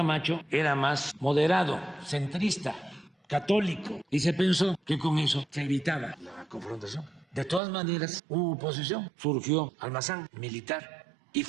era más moderado, centrista, católico. Y se pensó que con eso se evitaba la confrontación. De todas maneras, hubo oposición. Surgió Almazán, militar, y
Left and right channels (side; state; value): left; drops out; at 7.6 s